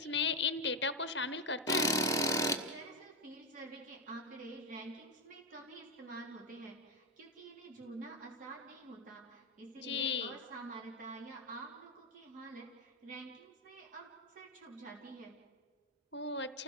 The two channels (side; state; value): both; normal; correlation 0.07